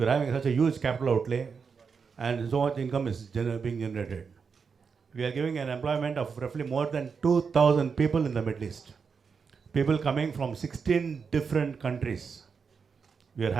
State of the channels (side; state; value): left; quieter; 5.7 dB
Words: are having such a huge capital outlay, and so much income is being generated. We are giving an employment of roughly more than 2,000 people in the Middle East. People coming from 16 different countries. We are